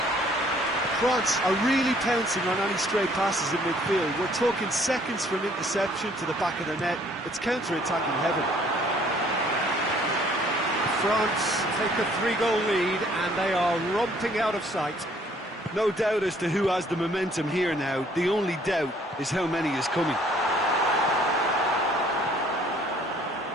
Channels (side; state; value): both; normal; correlation 0.60